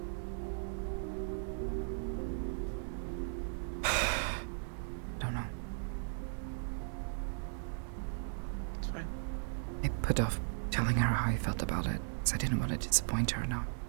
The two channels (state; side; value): silent; left; digital silence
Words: Don't know. It's fine. I put off telling her how I felt about it because I didn't want to disappoint her. Now